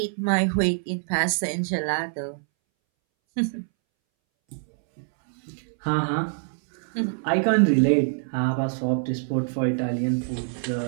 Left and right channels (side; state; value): left; silent; 62 dB below the other